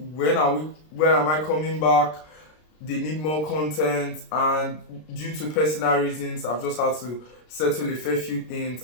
when am I coming back? They need more content, and due to personal reasons I've just had to settle a fair few things,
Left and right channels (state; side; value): late; right; 33 ms